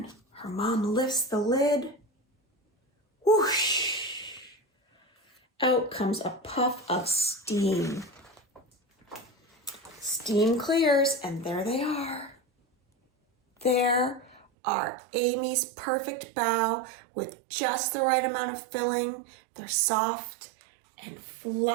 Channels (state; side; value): drops out; left; at 14.5 s